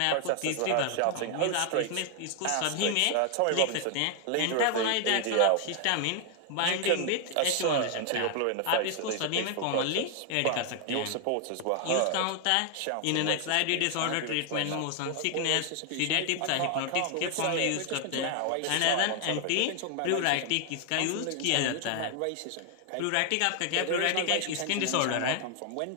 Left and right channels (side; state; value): both; different; correlation 0.00